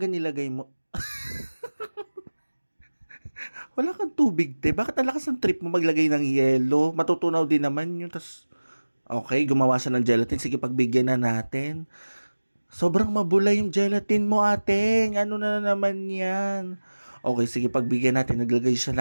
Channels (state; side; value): inverted; both; correlation -1.00